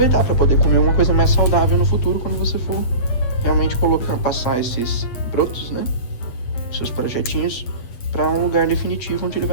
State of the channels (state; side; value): late; right; 8.4 ms